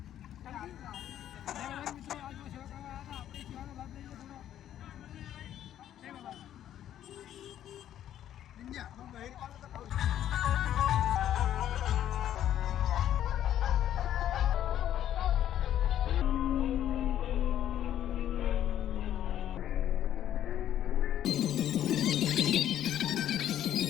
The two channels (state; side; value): quieter; right; 11.3 dB